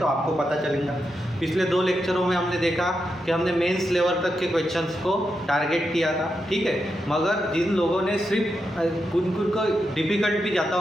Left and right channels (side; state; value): both; normal; correlation 0.86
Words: आपको पता चलेगा। पिछले 2 लेक्चरों में हमने देखा कि हमने मेंस लेवल तक के क्वेश्चंस को टारगेट किया था, ठीक है। मगर जिन लोगों ने सिर्फ उनको डिफ़िकल्ट भी जाता